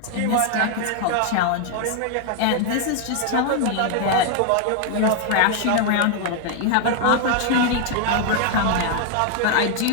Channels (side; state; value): both; different; correlation 0.00